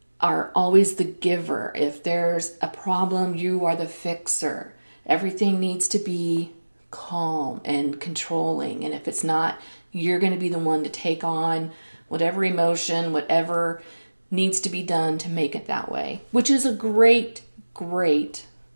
are always the giver. If there's a problem, you are the fixer. Everything needs to be calm and controlling. And if it's not, you're going to be the one to take on whatever emotion, whatever needs to be done to make it that way, which is a great, great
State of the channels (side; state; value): both; inverted; correlation -1.00